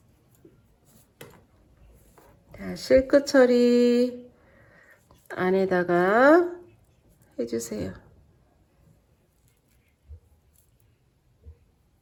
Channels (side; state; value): both; identical; correlation 1.00